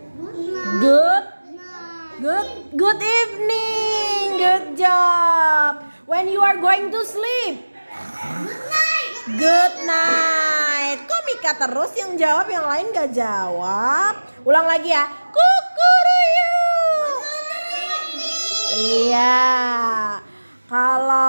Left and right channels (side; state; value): both; inverted; correlation -1.00